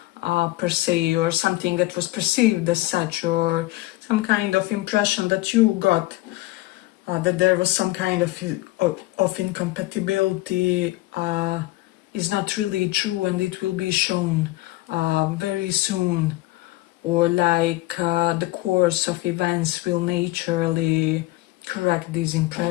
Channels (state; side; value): quieter; right; 18.8 dB